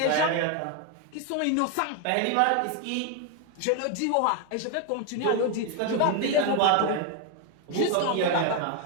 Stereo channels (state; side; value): different; both; correlation 0.01